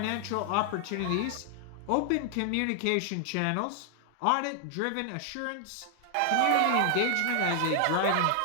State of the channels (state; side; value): different; both; correlation 0.00